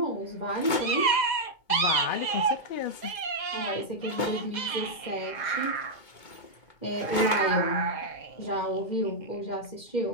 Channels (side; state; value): right; late; 2.2 ms